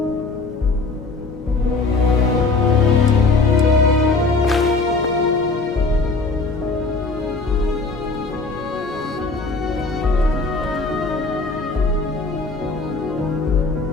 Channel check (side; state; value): right; quieter; 3.7 dB